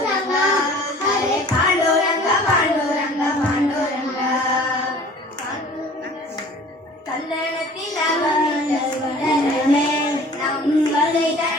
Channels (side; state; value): both; normal; correlation 0.48